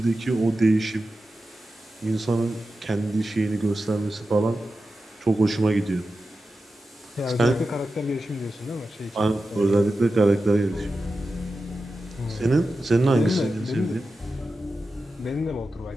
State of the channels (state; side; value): normal; both; correlation 0.92